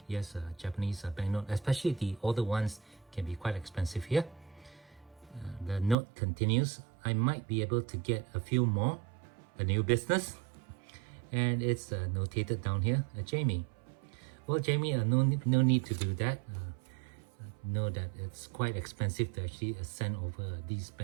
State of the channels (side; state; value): left; drops out; at 6.0 s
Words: Yes, Japanese banknote, especially the older ones, can be quite expensive here. The note continues, "I might be able to get a few more, a new business." And it's notated down here, Jamie. Well, Jamie, no need to do that. Know that it's quite expensive to actually send over these